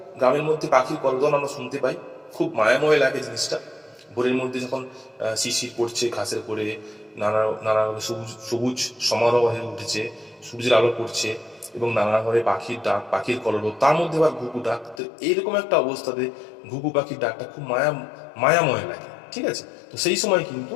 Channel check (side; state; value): right; drops out; at 15.0 s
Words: গ্রামের মধ্যে পাখির কলরব আমরা শুনতে পাই, খুব মায়াময় লাগে জিনিসটা। ভোরের মধ্যে যখন শিশির পড়ছে ঘাসের পরে, নানা নানা সবুজ সবুজ সমারোহ হয়ে উঠেছে, সূর্যের আলো পড়ছে এবং নানাভাবে পাখির ডাক, পাখির কলরব, তার মধ্যে আবার ঘুঘু ডাক। তো এইরকম একটা অবস্থাতে ঘুঘু পাখির ডাকটা খুব মায়াময় লাগে, ঠিক আছে? তো সেই সময় কিন্তু